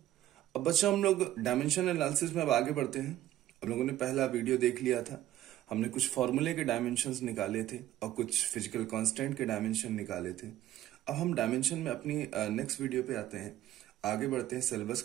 अब बच्चों हम लोग डायमेंशन एनालिसिस में अब आगे बढ़ते हैं। अब लोगों ने पहला वीडियो देख लिया था। हमने कुछ फॉर्मूले के डायमेंशंस निकाले थे और कुछ फिजिकल कांस्टेंट के डायमेंशन निकाले थे। अब हम डायमेंशन में अपनी नेक्स्ट वीडियो पे आते हैं, आगे बढ़ते हैं, सिलेबस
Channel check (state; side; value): quieter; left; 13.4 dB